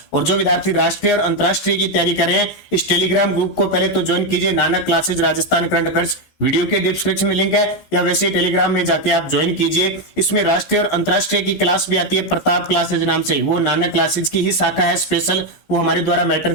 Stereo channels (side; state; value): right; late; 15 ms